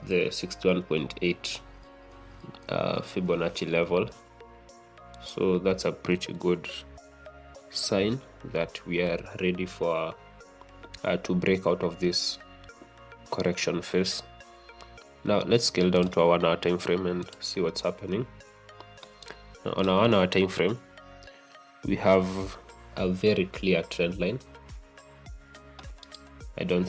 the 61.8 Fibonacci level. So that's a pretty good sign that we are ready for to break out of this correction phase. Now let's scale down to our 1-hour time frame and see what's happening. Now, on our 1-hour time frame, we have a very clear trend line. I don't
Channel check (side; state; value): both; identical; correlation 1.00